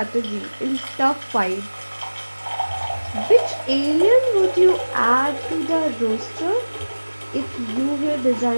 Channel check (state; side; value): inverted; both; correlation -1.00